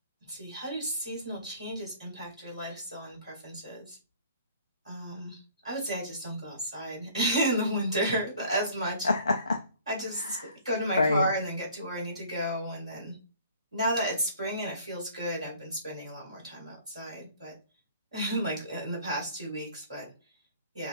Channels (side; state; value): both; inverted; correlation -0.52